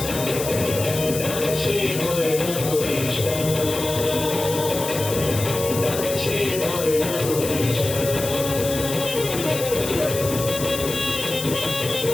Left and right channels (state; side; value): noise; left; hiss, 7 dB below the sound